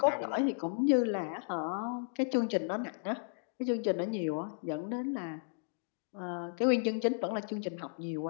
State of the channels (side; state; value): right; silent; digital silence